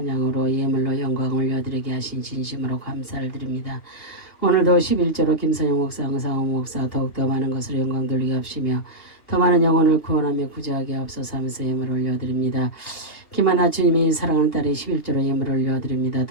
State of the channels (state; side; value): late; right; 3.2 ms